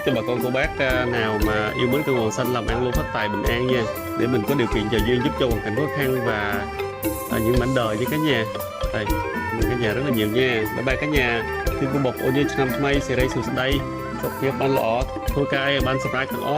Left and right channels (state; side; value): identical; both; correlation 1.00